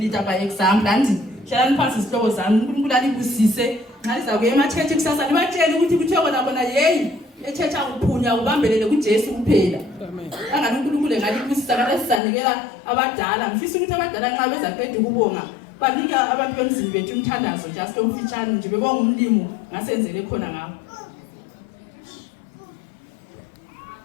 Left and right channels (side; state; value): right; drops out; at 12.2 s